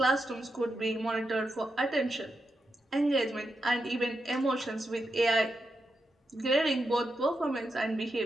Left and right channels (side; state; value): both; normal; correlation 0.86